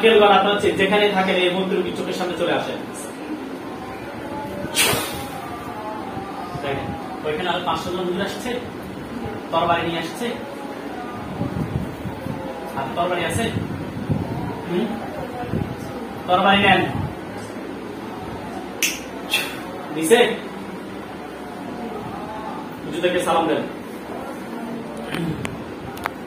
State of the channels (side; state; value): both; identical; correlation 1.00